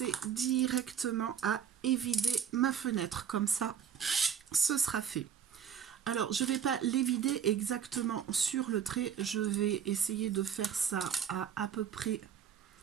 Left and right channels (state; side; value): quieter; left; 8.2 dB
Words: directement à évider ma fenêtre, comme ça ce sera fait. Alors je ne vais pas l'évider exactement sur le trait, je vais essayer de faire ça à peu près